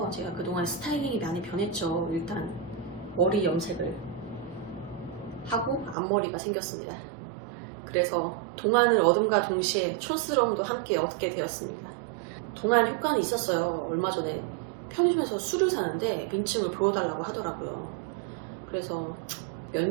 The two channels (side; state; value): left; drops out; at 6.0 s